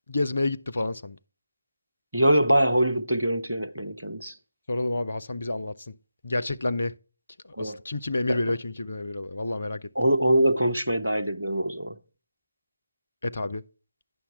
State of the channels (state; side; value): inverted; both; correlation -0.89